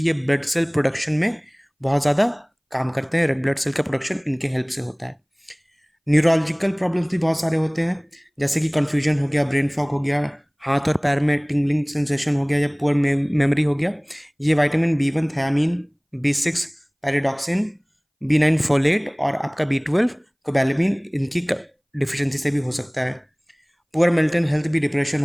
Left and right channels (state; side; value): identical; both; correlation 1.00